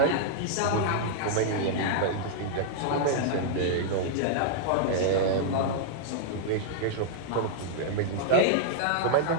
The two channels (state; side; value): different; both; correlation -0.01